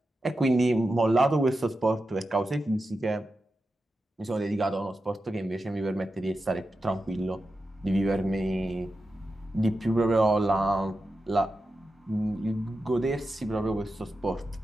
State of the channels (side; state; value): both; normal; correlation 0.90